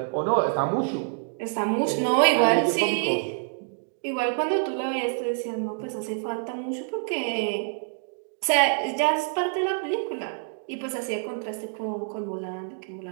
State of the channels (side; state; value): left; silent; digital silence